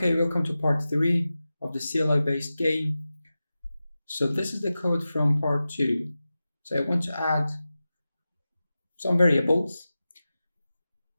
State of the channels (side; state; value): both; inverted; correlation -0.94